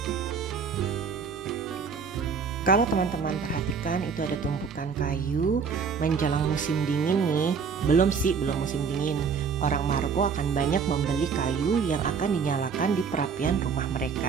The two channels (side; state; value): left; quieter; 5.9 dB